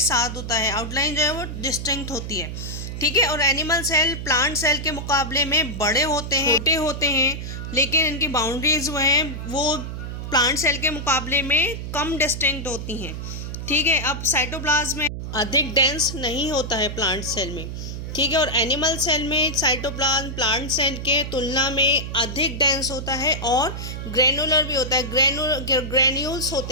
होता है, आउटलाइन जो है वो डिस्टिंक्ट होती है। ठीक है, और एनिमल सेल प्लांट सेल के मुकाबले में बड़े होते हैं, छोटे होते हैं, लेकिन इनकी बाउंड्रीज वो प्लांट सेल के मुकाबले में कम डिस्टिंक्ट होती हैं। ठीक है, अब साइटोप्लाज्म में अधिक डेंस नहीं होता है प्लांट सेल में। ठीक है, और एनिमल सेल में साइटोप्लाज्म प्लांट सेल के तुलना में अधिक डेंस होता है और ग्रेनुलर भी होता है, ग्रेन्यूल्स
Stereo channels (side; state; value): right; noise; hum, 7 dB below the sound